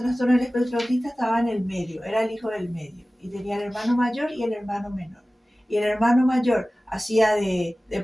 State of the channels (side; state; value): both; normal; correlation 0.97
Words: del espectro autista estaba en el medio, era el hijo del medio. y tenía el hermano mayor y el hermano menor. Y el hermano mayor hacía de